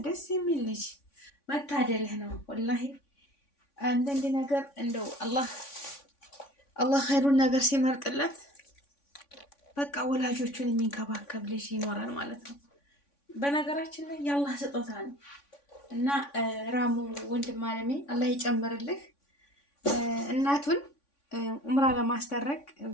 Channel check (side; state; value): right; late; 3.5 ms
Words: ደስ የሚል ልጅ መታደልህ ነው ወላሂ። አንዳንድ ነገር እንደው አላህ ኸይሩን ነገር ሲመርጥለት በቃ ወላጆቹን የሚንከባከብ ልጅ ይኖራል ማለት ነው። በነገራችን ላይ የአላህ ስጦታ ነው እና ራሙ ወንድም አለሜ አላህ ይጨምርልህ። እናቱን ኡምራ ለማስደረግ